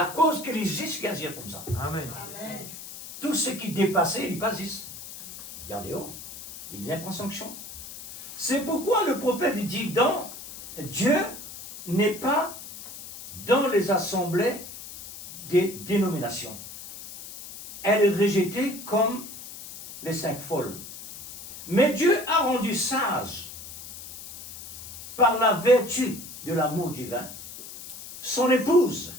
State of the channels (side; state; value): left; noise; hiss, 13 dB below the sound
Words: cause qu'il existe, qu'il agit comme ça. Amen. Tout ce qui dépassait, il passe ici. Regardez, oh, il vient prendre sanction. C'est pourquoi le prophète dit, Dieu n'est pas dans les assemblées des dénominations. Elle est rejetée comme les 5 folles. Mais Dieu a rendu sage, par la vertu de l'amour divin, son épouse.